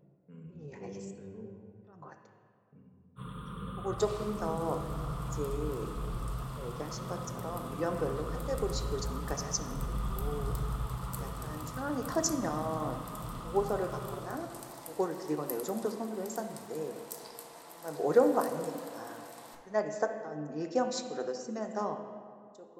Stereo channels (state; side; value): identical; both; correlation 1.00